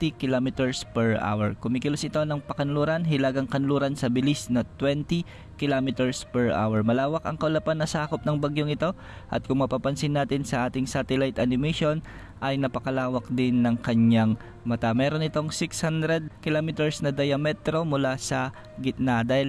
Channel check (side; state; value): both; identical; correlation 1.00